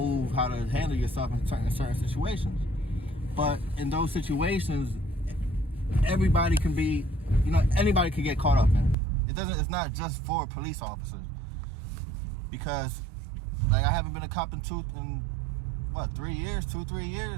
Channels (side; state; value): left; drops out; at 9.0 s